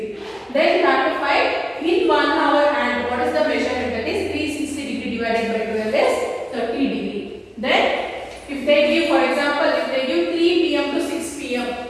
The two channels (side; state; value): both; identical; correlation 1.00